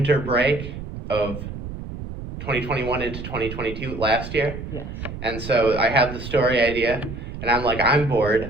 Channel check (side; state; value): right; noise; rumble, 9 dB below the sound